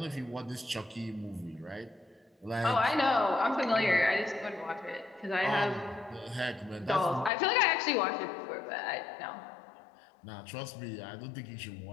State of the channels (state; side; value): drops out; right; at 7.3 s